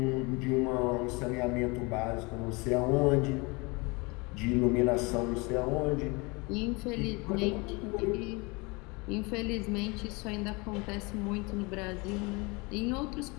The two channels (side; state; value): right; quieter; 27.2 dB